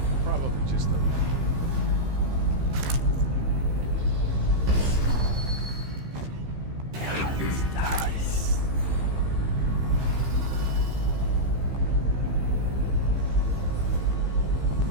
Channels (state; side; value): late; left; 15 ms